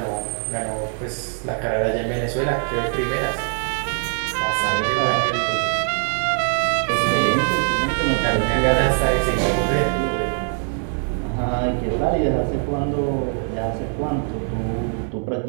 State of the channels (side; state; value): left; silent; 55 dB below the other